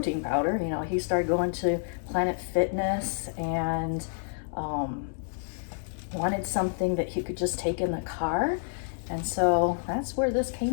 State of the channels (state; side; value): silent; right; digital silence